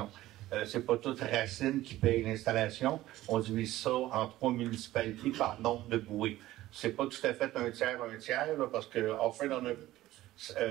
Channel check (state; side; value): quieter; left; 15.7 dB